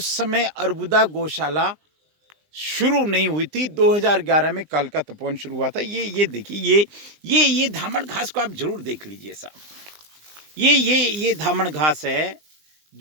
समय अर्बुदा गौशाला शुरू नहीं हुई थी। 2011 में कालका तपोवन शुरू हुआ था। ये देखिए, ये धामण घास को आप जरूर देख लीजिए साहब। ये धामण घास है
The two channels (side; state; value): left; late; 19 ms